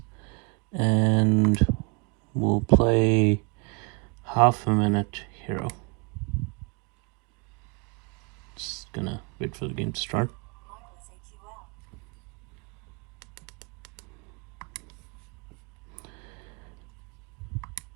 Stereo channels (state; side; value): quieter; left; 31.7 dB